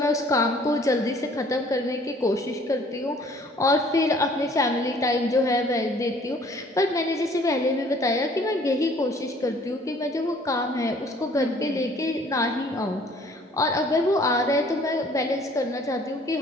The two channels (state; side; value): normal; both; correlation 0.56